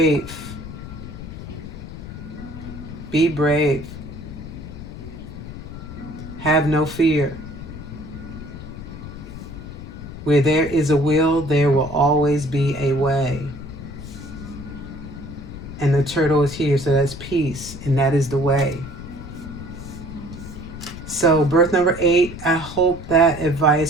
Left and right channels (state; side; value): noise; left; rumble, 11 dB below the sound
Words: Be brave. Have no fear. Where there is a will, there will always be a way. And the turtle is here, so that's peace, and that is the way. So birth number 8, I hope that